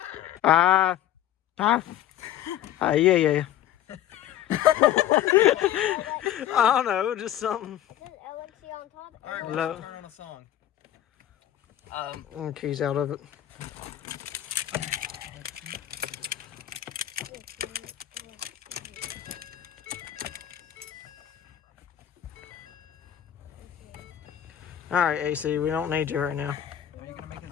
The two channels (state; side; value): quieter; right; 11.7 dB